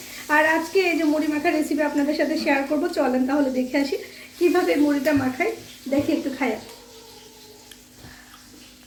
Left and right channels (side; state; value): both; identical; correlation 1.00